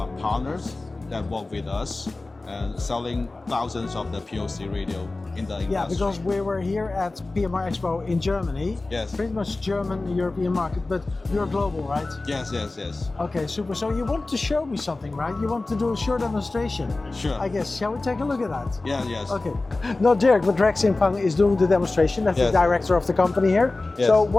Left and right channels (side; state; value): right; quieter; 3.2 dB